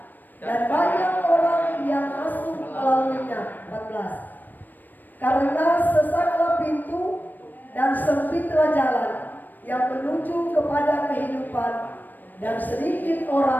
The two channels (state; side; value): late; right; 0.089 ms